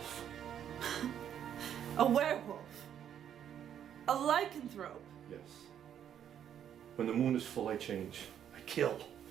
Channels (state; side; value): quieter; left; 9.5 dB